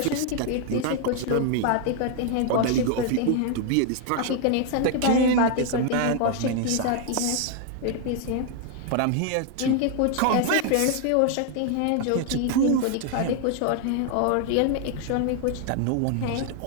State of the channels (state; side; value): different; both; correlation 0.00